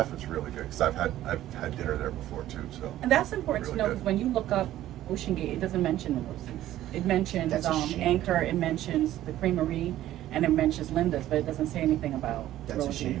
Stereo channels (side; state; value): left; quieter; 13.6 dB